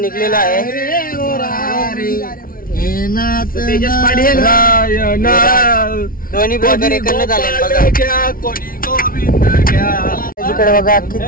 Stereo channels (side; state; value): right; late; 0.42 ms